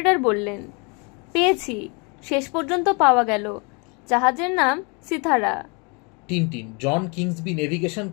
বললেন, পেয়েছি, শেষ পর্যন্ত পাওয়া গেল। জাহাজের নাম সিতারা। টিনটিন, জন কিংসবি নেভিগেশন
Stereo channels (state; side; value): quieter; right; 32.2 dB